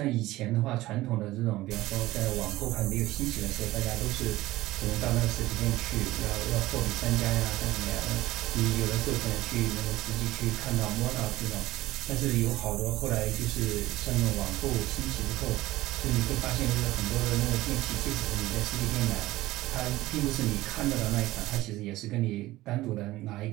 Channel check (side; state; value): left; quieter; 17.4 dB